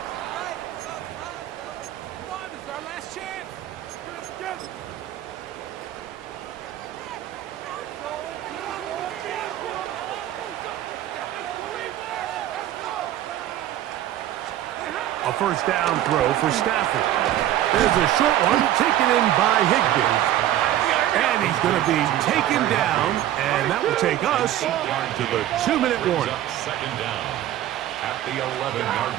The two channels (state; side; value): quieter; left; 12.8 dB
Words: A first down throw for Stafford. There's a short one taken in by Higbee. And he's going to be taken down, and that will take us to the 2-minute warning. Second down at the 11-yard